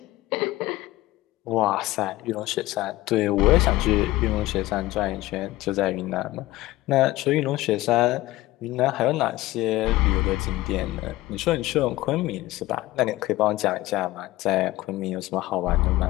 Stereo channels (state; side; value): quieter; right; 17.8 dB